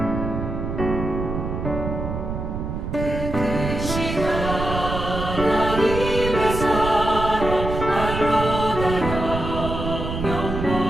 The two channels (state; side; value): noise; right; rumble, 5 dB below the sound